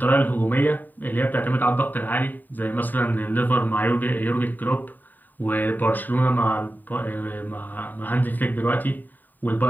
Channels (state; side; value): late; right; 0.088 ms